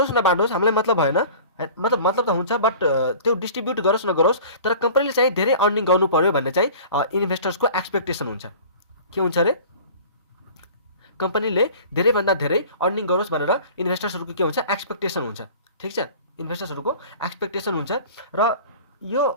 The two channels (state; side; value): inverted; both; correlation -0.43